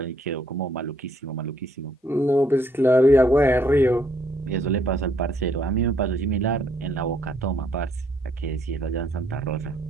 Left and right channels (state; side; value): normal; both; correlation 0.68